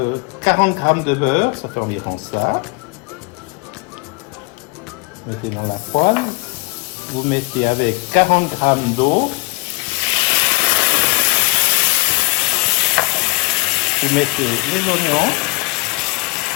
40 grammes de beurre, ça fait environ ça. Mettez dans la poêle. Vous mettez avec 40 grammes d'eau. Vous mettez les oignons.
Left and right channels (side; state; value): right; quieter; 28.7 dB